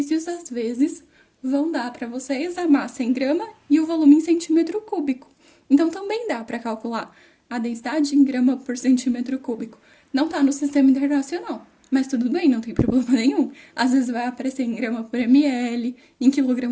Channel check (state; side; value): identical; both; correlation 1.00